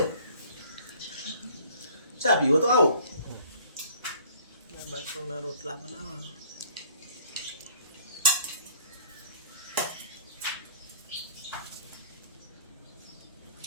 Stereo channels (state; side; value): inverted; both; correlation -0.55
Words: चा पीओ तो आओ। बच्चों ना रोटला बनावा।